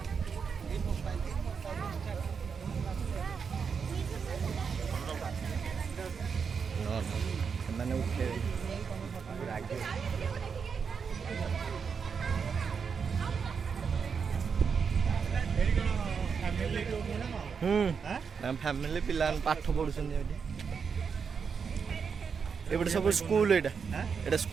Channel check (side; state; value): left; quieter; 6.1 dB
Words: ସେମାନେ ଉଠେଇବେ ଫ୍ୟାମିଲି ପିଲାମାନେ ପାଠ ପଢୁଛନ୍ତି ଏଠି ଏପଟେ ସବୁ ସ୍କୁଲ ଏଇଟା